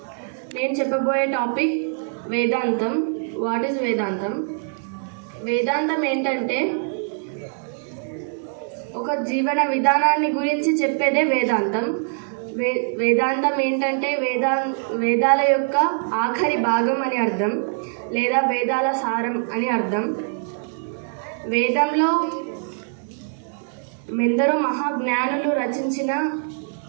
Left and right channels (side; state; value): left; silent; 63 dB below the other